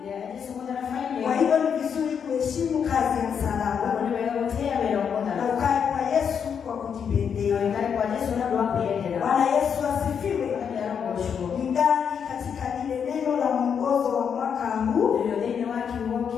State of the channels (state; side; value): quieter; right; 7.3 dB